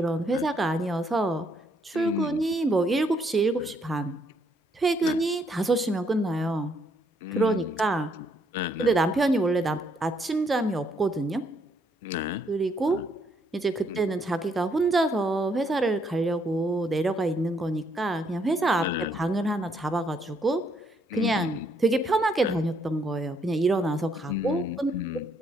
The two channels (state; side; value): normal; both; correlation 0.71